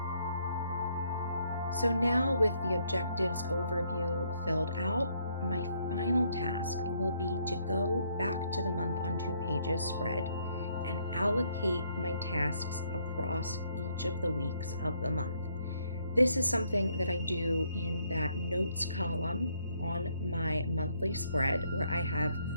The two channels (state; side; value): inverted; both; correlation -0.70